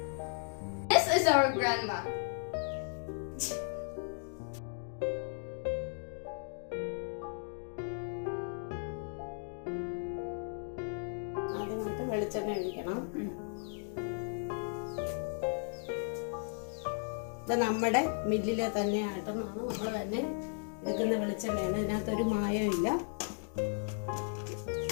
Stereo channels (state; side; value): silent; right; 54 dB below the other